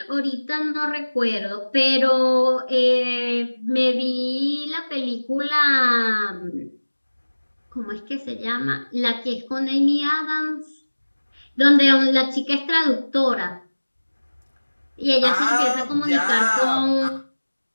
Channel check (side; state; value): both; inverted; correlation -1.00